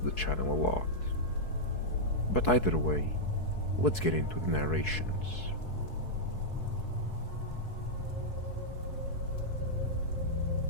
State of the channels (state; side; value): late; right; 4.6 ms